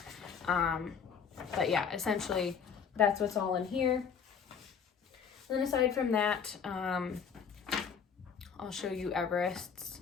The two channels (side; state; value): right; quieter; 6.8 dB